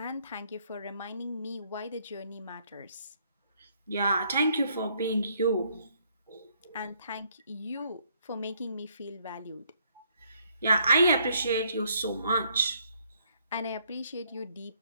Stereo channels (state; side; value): inverted; both; correlation -0.68